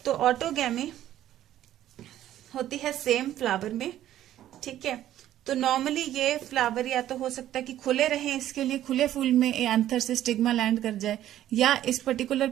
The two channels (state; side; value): quieter; left; 12.5 dB